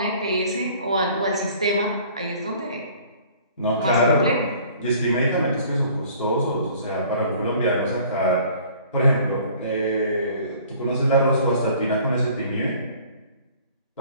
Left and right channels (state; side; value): inverted; both; correlation -0.52